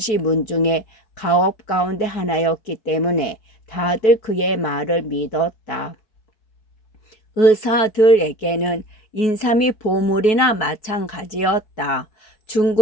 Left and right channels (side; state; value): right; late; 4.7 ms